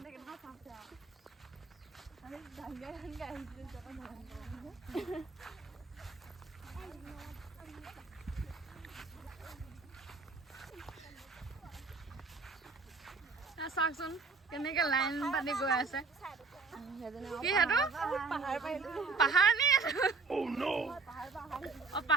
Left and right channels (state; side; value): quieter; left; 4.3 dB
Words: চাওকচোন কেনেকে লাইন পাতি গৈ আছে কি সেইটো পাহাৰ নি